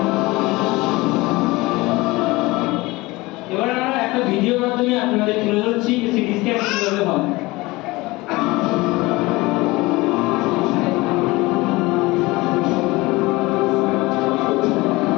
এবার আমরা একটা ভিডিওর মাধ্যমে আপনাদের তুলে ধরছি সিটি স্ক্যান কিভাবে হয়।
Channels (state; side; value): quieter; right; 21.6 dB